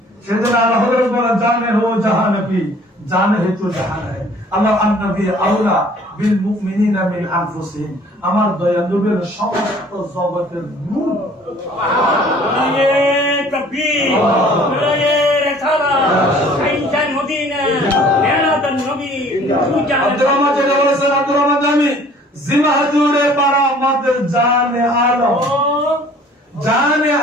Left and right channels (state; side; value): normal; both; correlation 0.53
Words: সেজন্য আল্লাহ বলেন জানে হো জাহান কি জানে হে তো জাহান है। আল্লাহ নবী আউলা বিল মুমিনিনা মিন আনফুসিহিম, আমার দয়াল নবীর সমস্ত জগতের নূর। সুবহানাল্লাহ। তাকবীর। সাইনজান মদিনা মেরাদান নবী। আব্দুর রহমান যেটা বলেছেন, আব্দুর রহমান জামি জিমা হুজুরে পারা আমাদের জানে আলম, জানে